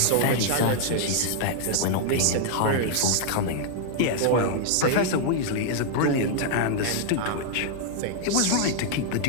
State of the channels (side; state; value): both; different; correlation -0.01